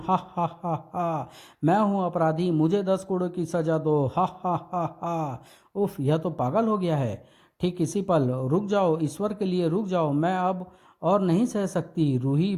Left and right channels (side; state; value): both; identical; correlation 1.00